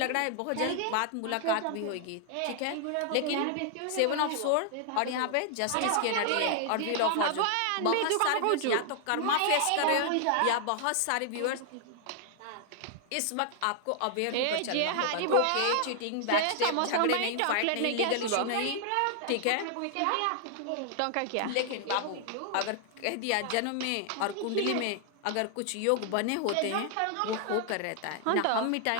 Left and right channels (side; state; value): both; different; correlation 0.00